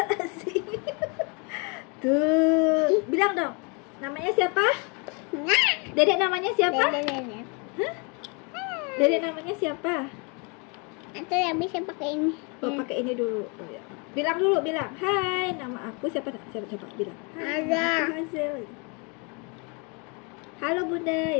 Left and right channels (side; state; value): right; quieter; 32.8 dB